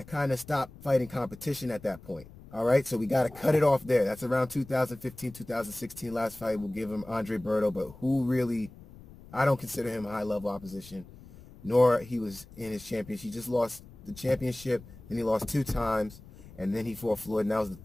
kind of stopped fighting competition at that point. All right, so we got to cut it off there. That's around 2015, 2016. Last fight, we'll give him Andre Berto, but who really, I don't consider him high-level opposition, nor he was in his championship. He just lost the championship, then he lost 2 times, and then he fought Floyd, and that was the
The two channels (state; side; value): noise; left; rumble, 19 dB below the sound